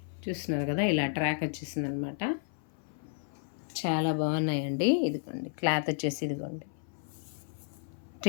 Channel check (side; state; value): right; silent; 56 dB below the other